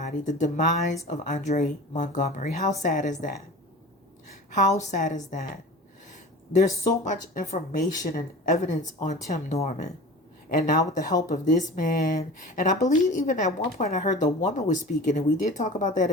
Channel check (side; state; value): both; normal; correlation 0.37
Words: the demise of Andre Montgomery. How sad is that? How sad is that? There's so much information and evidence on Tim Norman. And now with the help of this man, and I believe even at one point I heard the woman was speaking, and we did talk about that